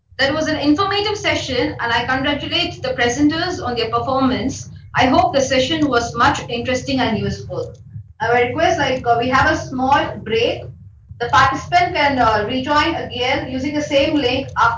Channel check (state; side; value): identical; both; correlation 1.00